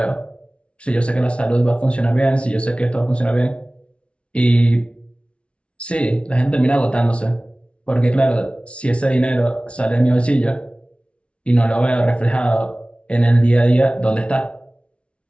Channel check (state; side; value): late; right; 0.060 ms